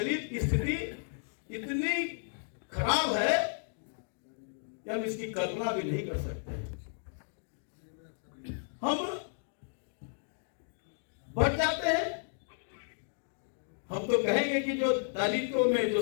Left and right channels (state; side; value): silent; right; digital silence